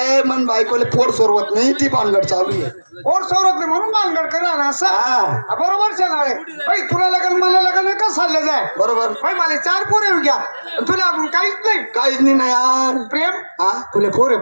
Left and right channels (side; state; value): both; inverted; correlation -1.00